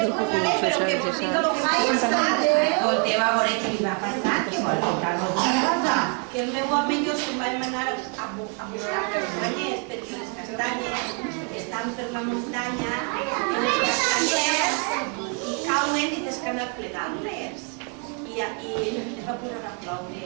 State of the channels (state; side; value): quieter; left; 37.2 dB